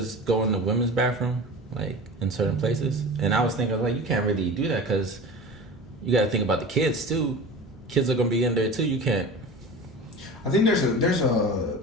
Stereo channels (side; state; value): both; normal; correlation 0.34